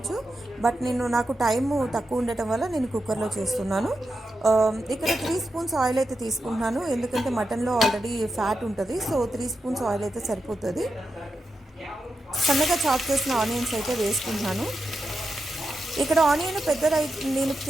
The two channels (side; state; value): both; normal; correlation 0.88